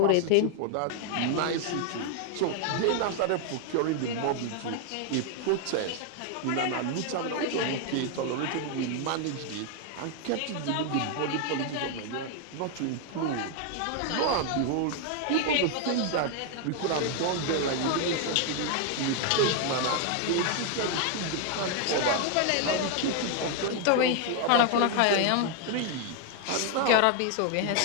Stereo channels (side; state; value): both; different; correlation 0.00